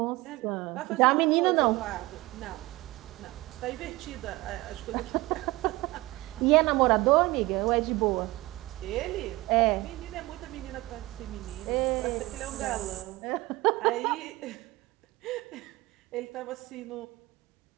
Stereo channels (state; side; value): quieter; left; 20.5 dB